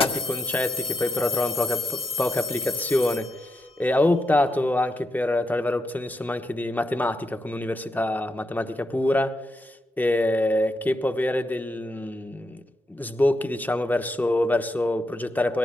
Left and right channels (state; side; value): normal; both; correlation 0.83